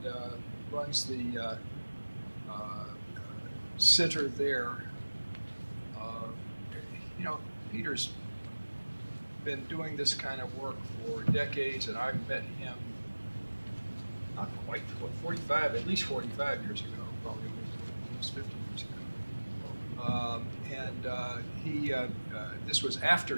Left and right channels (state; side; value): inverted; both; correlation -1.00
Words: runs the center there. Peter's been doing this kind of work for decades, and I've met him not quite, at least 45 years ago, probably almost 50 years ago. This was